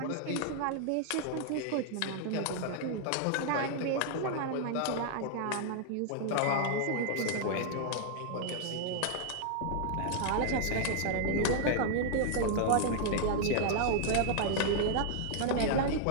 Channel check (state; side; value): different; both; correlation 0.00